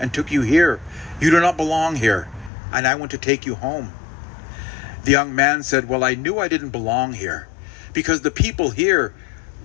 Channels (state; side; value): drops out; right; at 2.5 s